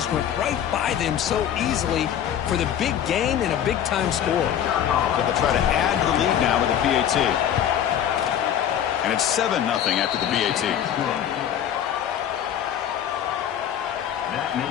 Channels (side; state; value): right; quieter; 9.9 dB